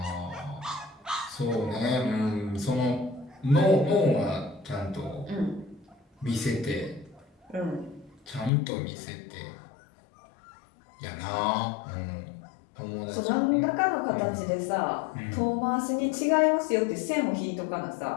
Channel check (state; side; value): drops out; right; at 8.5 s